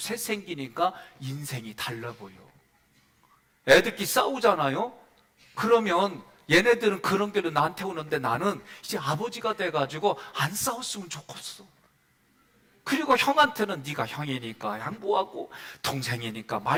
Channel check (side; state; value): both; identical; correlation 1.00